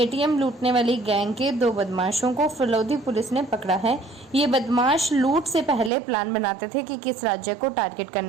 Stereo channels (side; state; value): left; drops out; at 5.9 s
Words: लूटने वाली गैंग के 2 बदमाशों को फलोदी पुलिस ने पकड़ा है। ये बदमाश लूट से पहले प्लान बनाते थे कि किस राज्य को टारगेट